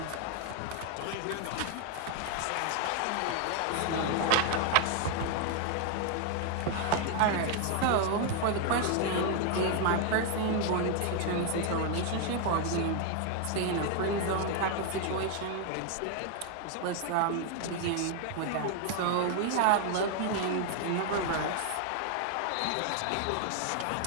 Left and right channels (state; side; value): different; both; correlation 0.01